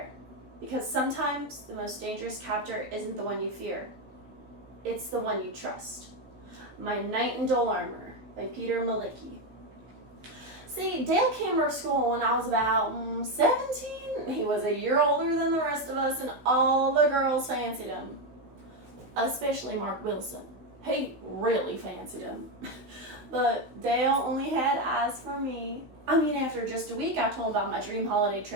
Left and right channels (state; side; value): late; left; 15 ms